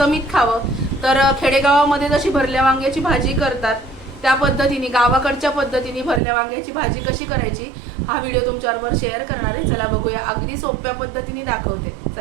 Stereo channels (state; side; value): drops out; left; at 6.2 s